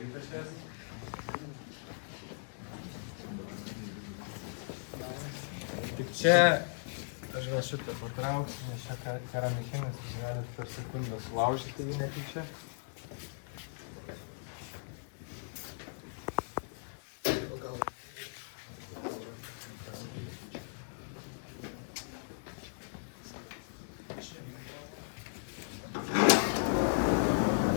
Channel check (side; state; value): right; silent; digital silence